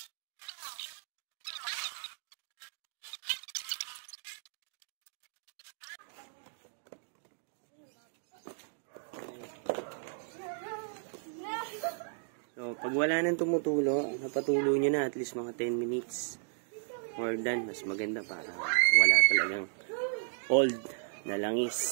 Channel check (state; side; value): silent; left; digital silence